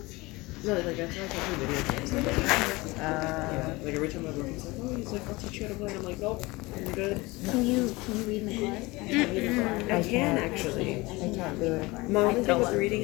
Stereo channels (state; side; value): quieter; right; 22.5 dB